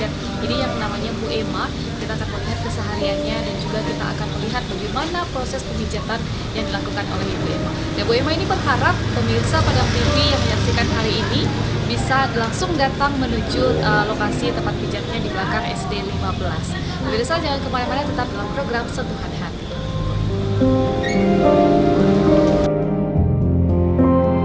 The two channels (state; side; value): identical; both; correlation 1.00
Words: ini yang namanya Bu Emma. Kita akan melihat kesehariannya dan juga kita akan melihat bagaimana proses pemijatan yang dilakukan oleh Ibu Emma. Dan Bu Emma ini berharap pemirsa Padang TV yang menyaksikan hari ini bisa langsung datang menuju lokasi tempat pijatnya di belakang SD 15. Pemirsa jangan kemana-mana, tetap dalam program Sentuhan Hati.